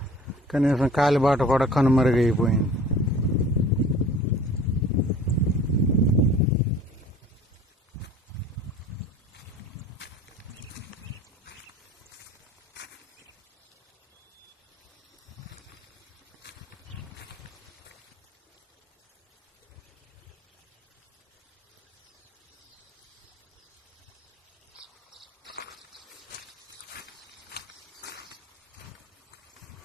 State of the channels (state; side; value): normal; both; correlation 0.46